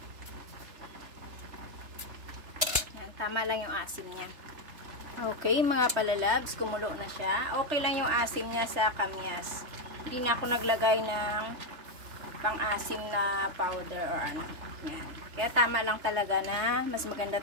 Tama lang yung asim niya. Okay, mga palalabs, kumulo na siya. Okay lang yung asim niya sa kamyas. Hindi na ako naglagay ng pang-asim na powder or ano. Yan. Kaya tama lang talaga na mas maganda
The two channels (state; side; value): late; left; 3.3 ms